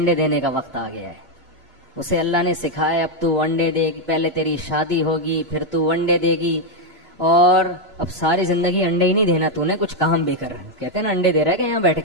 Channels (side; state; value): both; normal; correlation 0.02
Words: دینے کا وقت آ گیا ہے. اسے اللہ نے سکھایا اب تو انڈے دے گی، پہلے تیری شادی ہوگی پھر تو انڈے دے گی، اور اب ساری زندگی انڈے ہی نہیں دینا، تو نے کچھ کام بھی کر. کہتے ہیں نا انڈے دے رہا ہے کہ یہاں بیٹھ